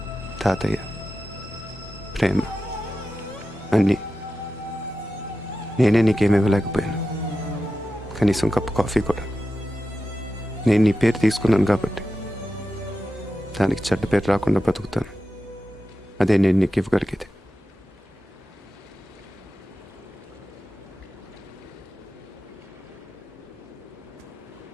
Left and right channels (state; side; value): normal; both; correlation 0.92